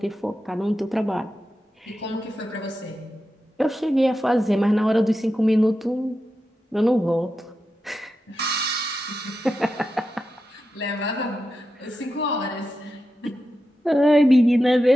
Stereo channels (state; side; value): normal; both; correlation 0.90